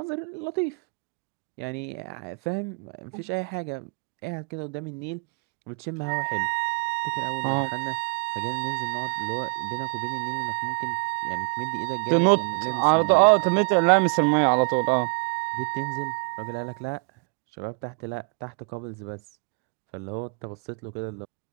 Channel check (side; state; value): left; quieter; 35.1 dB